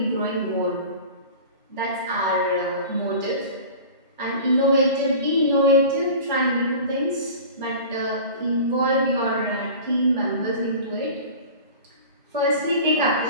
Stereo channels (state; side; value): inverted; both; correlation -0.38